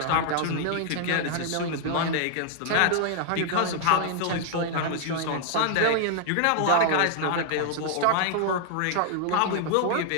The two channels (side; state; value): both; different; correlation 0.00